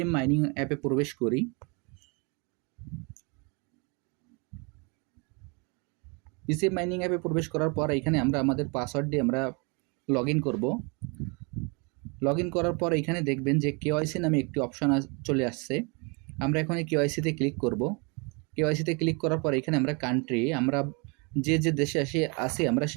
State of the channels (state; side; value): quieter; left; 31.9 dB